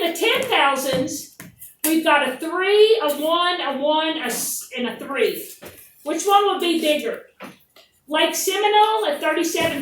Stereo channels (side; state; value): both; identical; correlation 1.00